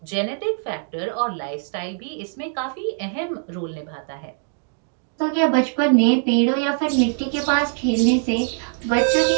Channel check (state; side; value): silent; left; 58 dB below the other